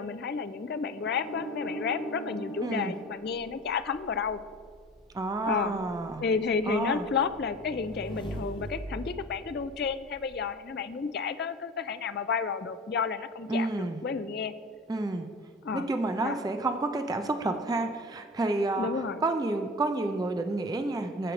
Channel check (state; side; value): normal; both; correlation 0.37